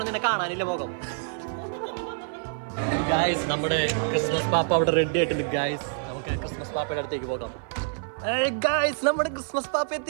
നിന്നെ കാണാനില്ല മുഖം. ഗായ്സ് നമ്മുടെ ക്രിസ്മസ് പാപ്പ അവിടെ റെഡി ആയിട്ടുണ്ട്. ഗായ്സ് നമുക്ക് ക്രിസ്മസ് പാപ്പയുടെ അടുത്തേക്ക് പോകാം. ഗായ്സ് നമ്മുടെ ക്രിസ്മസ് പാപ്പ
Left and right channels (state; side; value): silent; left; 55 dB below the other